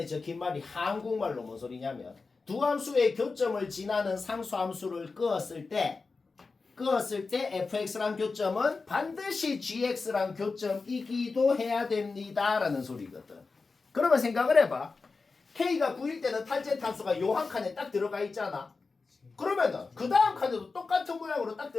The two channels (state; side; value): quieter; right; 4.2 dB